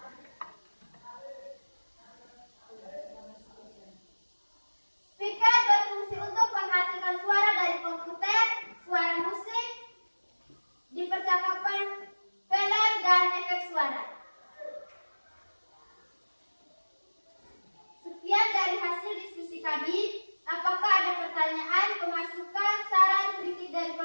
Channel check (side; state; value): both; inverted; correlation -1.00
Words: Speaker berfungsi untuk menghasilkan suara dari komputer, suara musik, di percakapan, film, dan efek suara. Sekian dari hasil diskusi kami. Apakah ada pertanyaan, pemasukan, saran, kritik dari